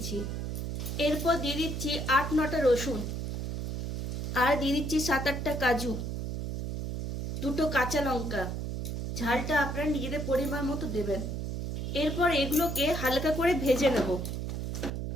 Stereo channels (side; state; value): right; noise; hum, 3 dB below the sound